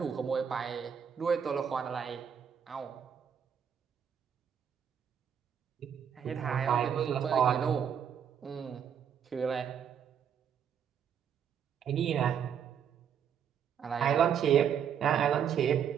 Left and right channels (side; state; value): left; quieter; 8.1 dB